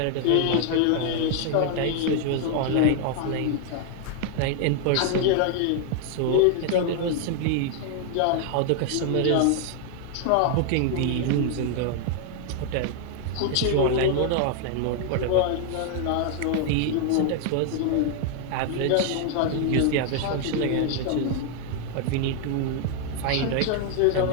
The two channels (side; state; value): both; different; correlation 0.00